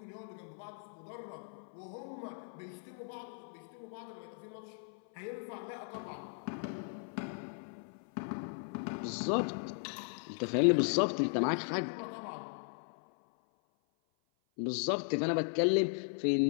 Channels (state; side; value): silent; right; 53 dB below the other